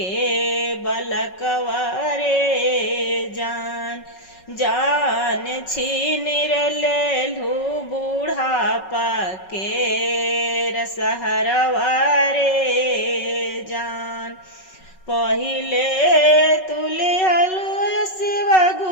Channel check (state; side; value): late; right; 5.4 ms